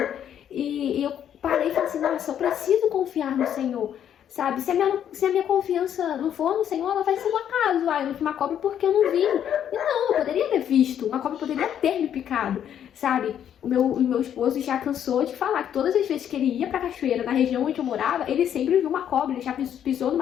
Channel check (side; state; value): right; quieter; 9.6 dB